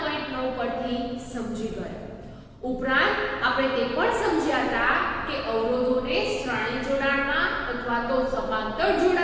પરથી સમજી ગયા. ઉપરાંત આપણે તે પણ સમજ્યા હતા કે અવરોધોને શ્રેણી જોડાણમાં અથવા તો સમાંતર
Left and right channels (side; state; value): both; identical; correlation 1.00